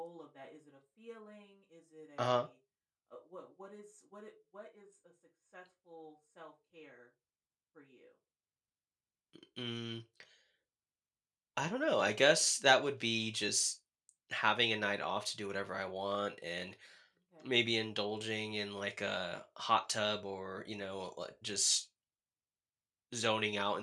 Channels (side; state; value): both; identical; correlation 1.00